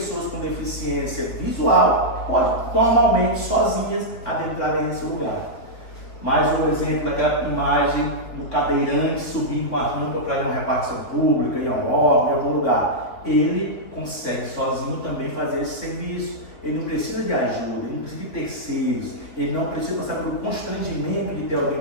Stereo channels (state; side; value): late; right; 4.0 ms